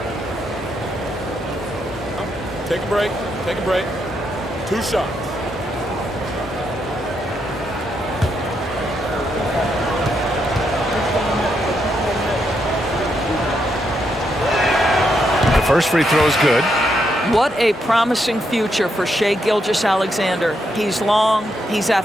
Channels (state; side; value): normal; both; correlation 0.79